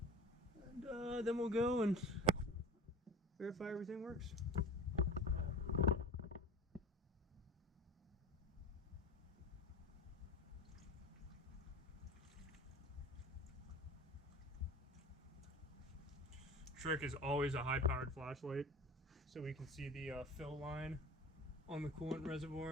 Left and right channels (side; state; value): both; normal; correlation 0.37